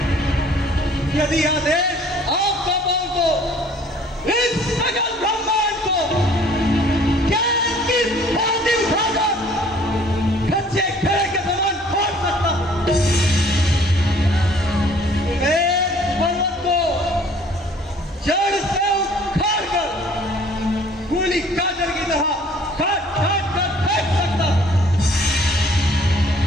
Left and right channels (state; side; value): normal; both; correlation 0.55